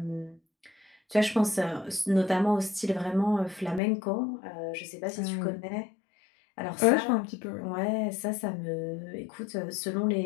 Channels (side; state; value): right; drops out; at 3.8 s